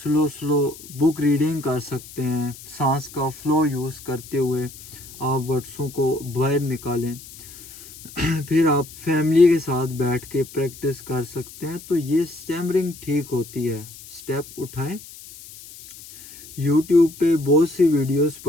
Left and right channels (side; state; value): left; noise; hiss, 17 dB below the sound